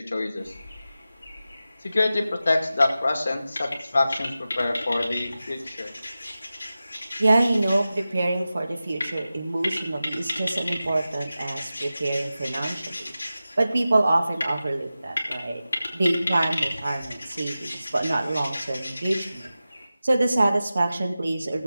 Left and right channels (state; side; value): inverted; both; correlation -0.94